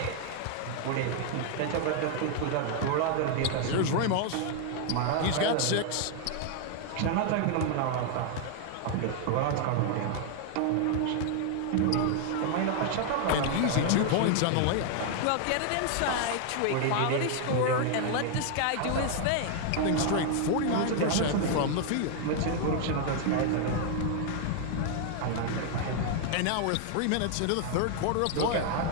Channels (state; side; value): different; both; correlation 0.00